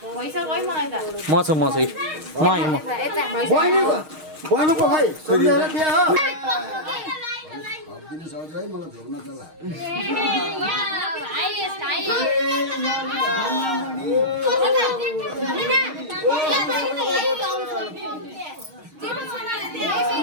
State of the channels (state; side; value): late; left; 6.4 ms